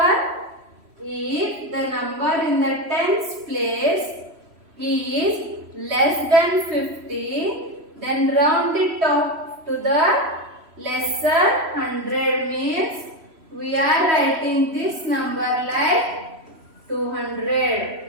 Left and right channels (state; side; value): late; left; 3.1 ms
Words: If the number in the tens place is less than 50, then round it off to the lesser 100, means we are writing this number like